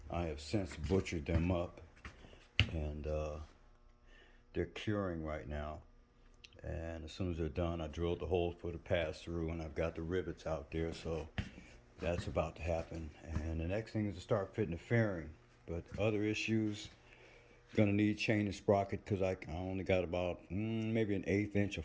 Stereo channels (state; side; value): identical; both; correlation 1.00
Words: I have since butchered them up, and they're curing right now. And as soon as they're done, I drilled the hole for the pass through, and I've got the rivets out there, so that's about to happen. And the next thing is to start fitting the fairing. But other issues, gonna need chain and sprocket because I only got about maybe an 1/8 inch of